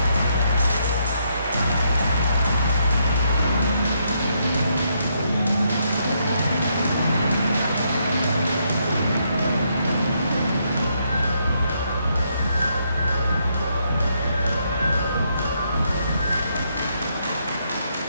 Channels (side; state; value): both; inverted; correlation -0.76